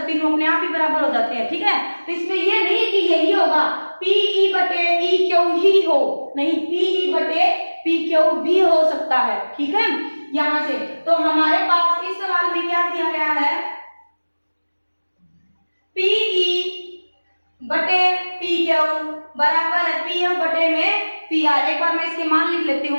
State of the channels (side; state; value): both; inverted; correlation -1.00